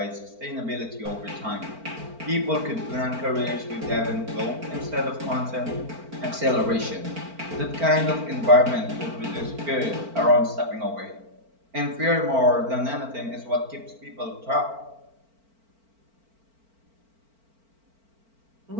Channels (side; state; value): left; late; 4.4 ms